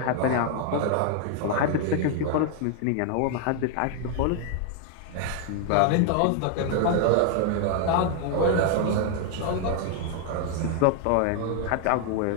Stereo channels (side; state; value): both; different; correlation 0.00